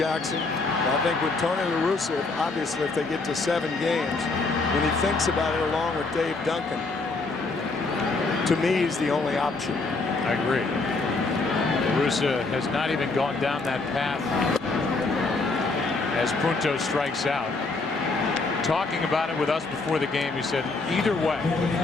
I think with Tony La Russa, obviously if they get to 7 games, when he thinks about it along with Dave Duncan, to me he's the only option. I agree. La Russa has not even gone down that path as Punto strikes out. Talking about it with us before the game, he said either way,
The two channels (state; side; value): quieter; right; 3.7 dB